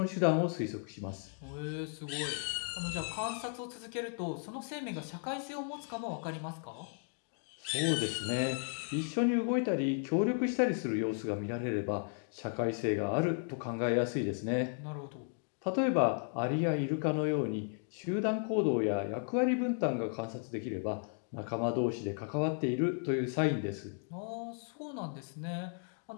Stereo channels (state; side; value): silent; right; 55 dB below the other